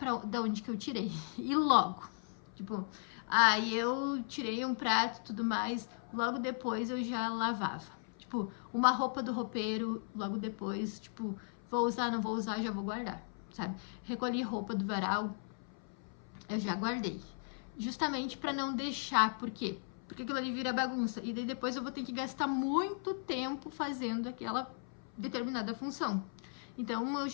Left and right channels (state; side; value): silent; right; 53 dB below the other